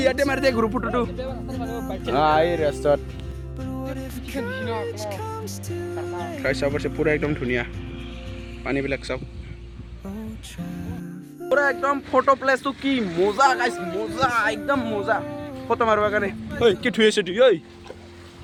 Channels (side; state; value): both; identical; correlation 1.00